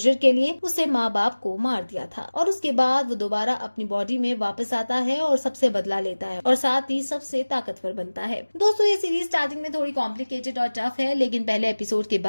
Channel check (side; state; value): both; inverted; correlation -1.00